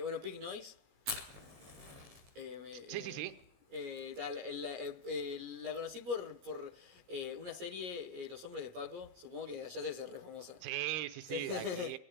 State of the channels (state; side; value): late; left; 17 ms